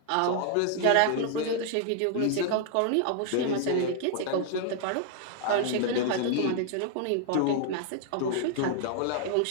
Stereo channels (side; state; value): both; different; correlation 0.00